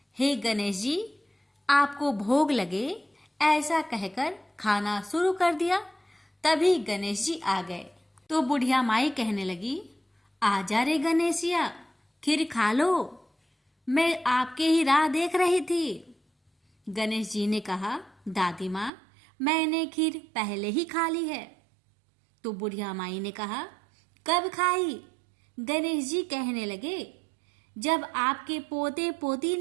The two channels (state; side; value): drops out; left; at 18.9 s